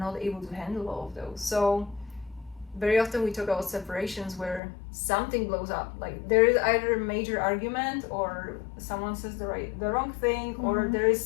able to handle all of those. So very often we talk about separations where something blows up, like there is either a major argument, or someone says the wrong thing, or there is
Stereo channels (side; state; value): right; drops out; at 4.6 s